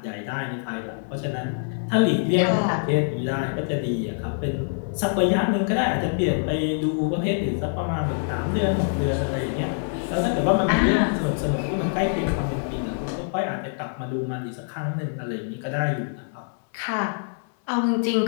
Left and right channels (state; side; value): silent; right; 62 dB below the other